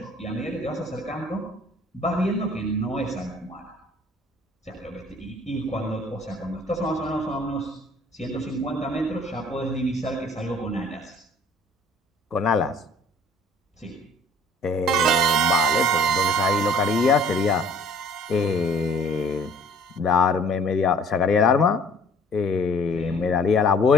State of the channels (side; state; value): both; normal; correlation 0.54